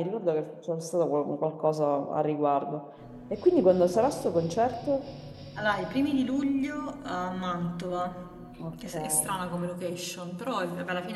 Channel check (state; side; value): identical; both; correlation 1.00